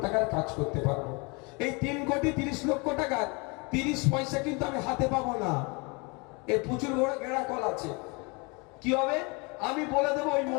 টাকার কাজ করতে পারবো। এই 3,30,00,000 টাকার 30 পয়সা কিন্তু আমি হাতে পাবো না, এর প্রচুর বড় গেড়া কল আছে। কি হবে? আমি বলে দেবো ওই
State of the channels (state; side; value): quieter; right; 29.7 dB